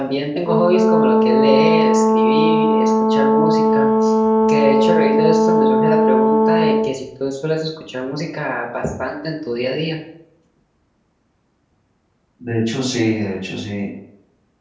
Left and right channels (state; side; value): identical; both; correlation 1.00